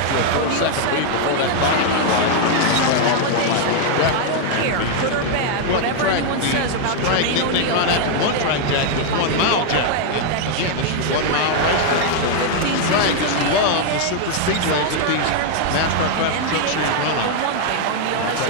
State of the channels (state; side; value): different; both; correlation 0.00